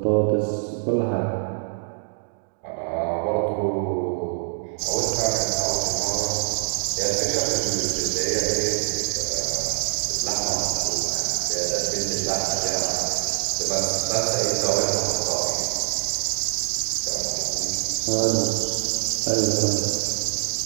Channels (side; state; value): left; silent; digital silence